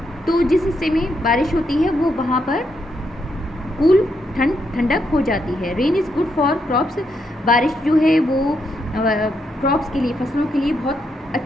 तो जिस हिस्से में बारिश होती है वो वहाँ पर कूल, ठंडक हो जाती है। Rain is good for crops. बारिश जो है वो क्रॉप्स के लिए, फसलों के लिए बहुत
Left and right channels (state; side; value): normal; both; correlation 0.80